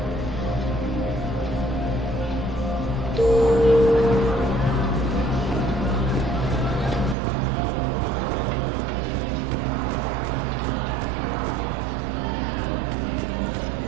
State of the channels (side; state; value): left; drops out; at 7.2 s